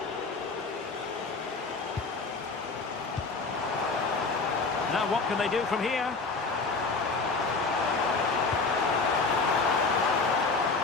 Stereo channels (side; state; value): right; quieter; 4.1 dB